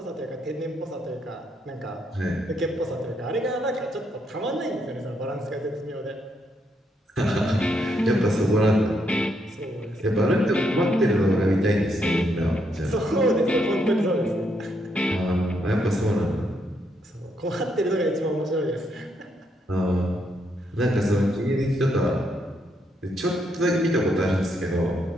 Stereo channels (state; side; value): normal; both; correlation 0.76